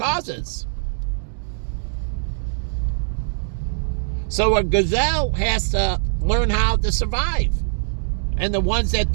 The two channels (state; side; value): silent; left; digital silence